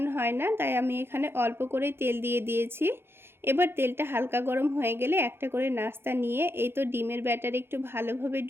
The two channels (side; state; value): left; late; 0.11 ms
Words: হয় না, তাই আমি এখানে অল্প করে তেল দিয়ে দিয়েছি। এবার তেলটা হালকা গরম হয়ে গেলে একটা করে নাস্তা নিয়ে এই তো ডিমের ব্যাটারে একটু ভালোভাবে